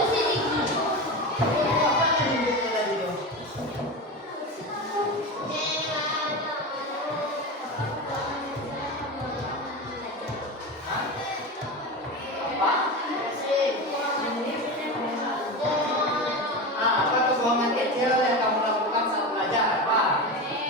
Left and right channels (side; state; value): both; normal; correlation 0.23